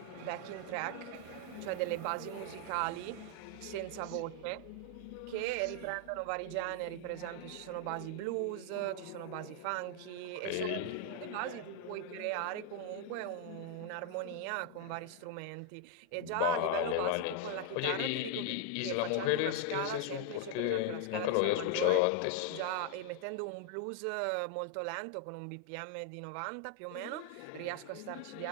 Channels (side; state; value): both; different; correlation 0.00